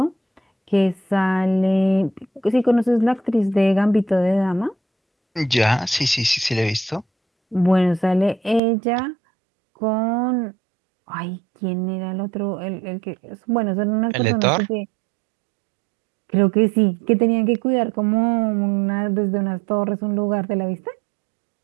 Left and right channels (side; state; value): left; drops out; at 8.6 s